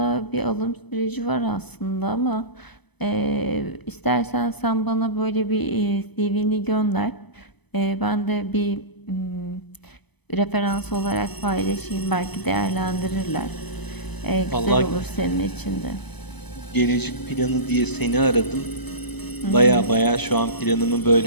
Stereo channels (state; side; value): late; right; 0.99 ms